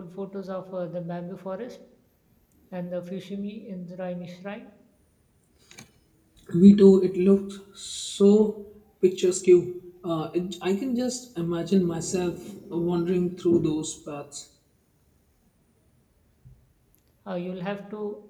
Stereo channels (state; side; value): identical; both; correlation 1.00